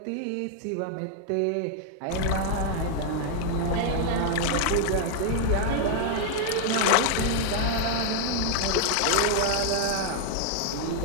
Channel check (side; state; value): both; different; correlation 0.00